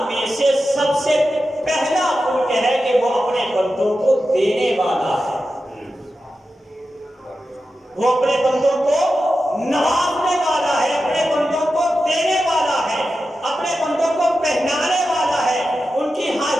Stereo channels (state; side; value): normal; both; correlation 0.91